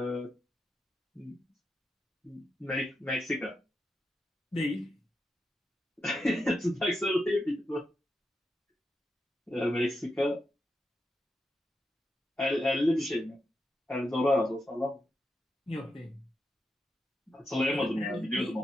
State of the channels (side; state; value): both; normal; correlation 0.86